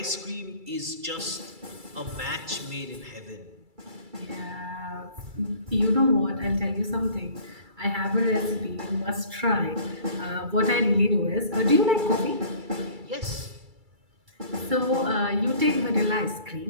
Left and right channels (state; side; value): late; left; 2.3 ms